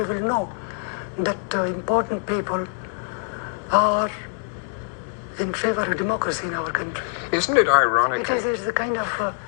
will know that important people are in favor of democracy in our country. Isn't it ironic? It's the kind of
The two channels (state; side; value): silent; right; 62 dB below the other